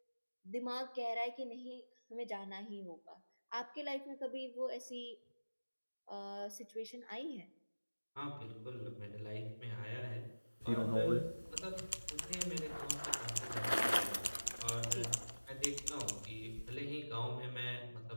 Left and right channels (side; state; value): both; inverted; correlation -1.00